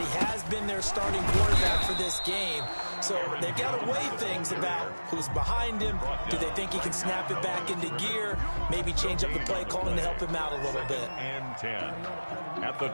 has been their starting quarterback for this game. So they've got to weigh things about who's behind him. Do they think he can snap it back into gear? Maybe change up the play calling to help him out a little bit. And 10 at the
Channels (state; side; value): inverted; both; correlation -1.00